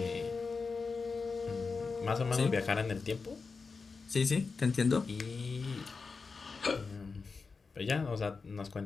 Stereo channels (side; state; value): right; quieter; 4.6 dB